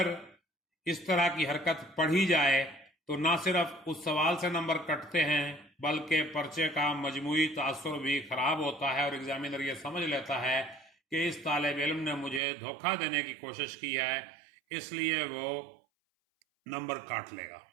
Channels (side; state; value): left; drops out; at 12.4 s